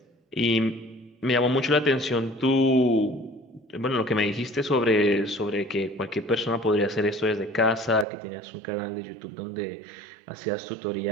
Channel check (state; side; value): drops out; left; at 8.1 s